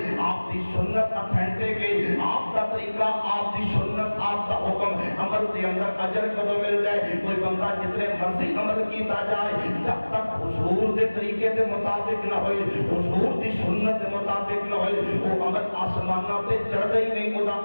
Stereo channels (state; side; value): inverted; both; correlation -1.00